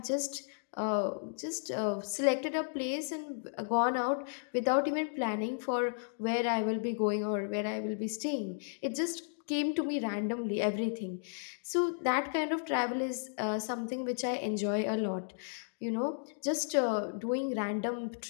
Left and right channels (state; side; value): silent; right; digital silence